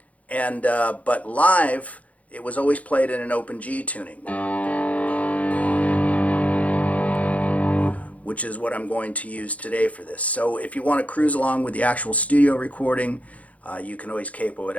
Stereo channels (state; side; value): late; right; 0.068 ms